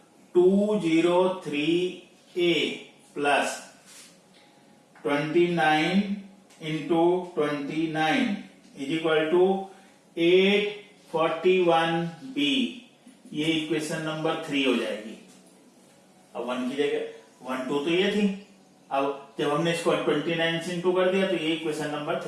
203A plus 29 into 29 is equal to 841B। ये इक्वेशन नंबर 3 हो जाएगी। अब 1 की जगह 1 2 तो ये थी, अब जब हमने इसको 29 से इंटू कर दिया तो ये इक्वेशन नंबर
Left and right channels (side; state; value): both; identical; correlation 1.00